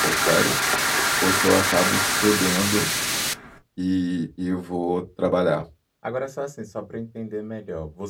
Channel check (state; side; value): identical; both; correlation 1.00